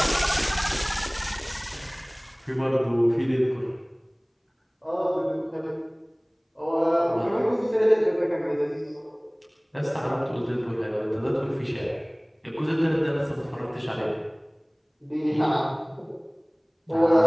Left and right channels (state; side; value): identical; both; correlation 1.00